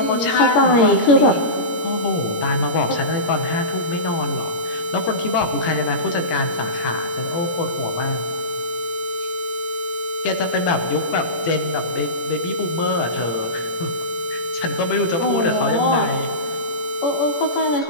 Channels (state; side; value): late; right; 17 ms